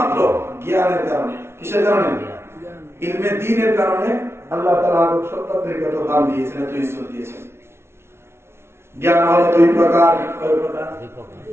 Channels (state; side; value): late; left; 0.12 ms